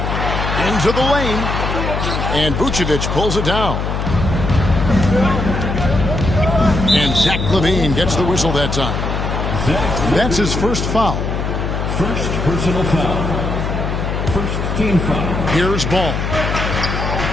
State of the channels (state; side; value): noise; left; hum, 2 dB below the sound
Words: Into the lane. And Vucevic pulls it down. And Zach LaVine gets the whistle that time. That's his first foul. First personal foul. First team foul. Here's Ball.